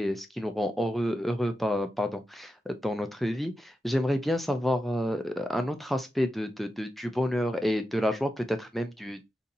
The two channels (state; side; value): normal; both; correlation 0.89